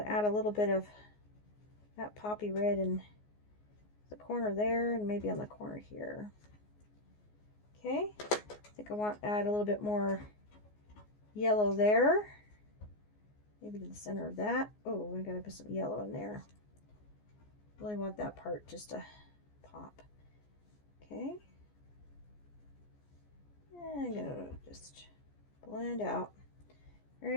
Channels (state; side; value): late; right; 14 ms